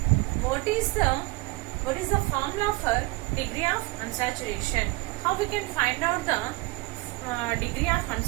What is the formula for degree of unsaturation? How we can find out the degree of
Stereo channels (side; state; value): left; quieter; 23.1 dB